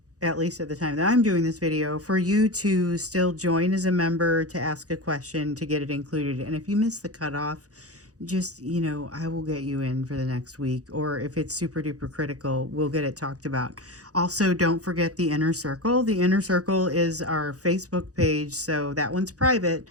at least at the time that I'm doing this video, for you to still join as a member to ask a question to get it included. And if you miss the cutoff, just, I will get you in for the next week. Or if it's super duper critical, we'll get it talked about. Also, don't forget the Inner Circle. The Inner Circle is our Facebook page, so that one's private.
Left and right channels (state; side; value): late; left; 0.67 ms